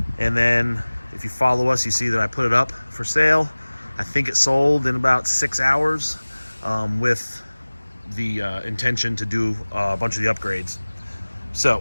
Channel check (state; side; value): inverted; both; correlation -1.00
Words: and then if you follow us, you see that I put it up for sale. I think it sold in about 6 hours, with the intention to do a bunch of the upgrades.